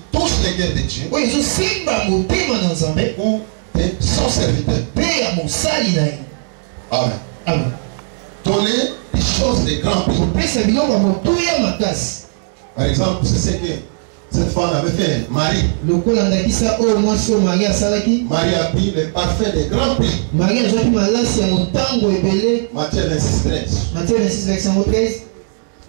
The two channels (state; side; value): silent; left; 68 dB below the other